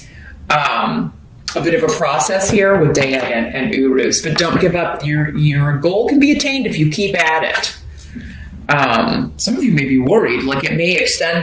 a bit of a process here with Daya and Urus. But don't give up. Your goal can be attained if you keep at it. Some of you may be worried. It may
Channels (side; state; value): both; identical; correlation 1.00